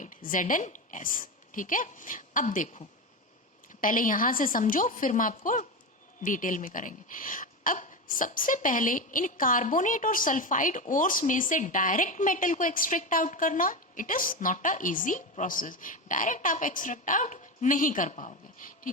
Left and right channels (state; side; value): normal; both; correlation 0.18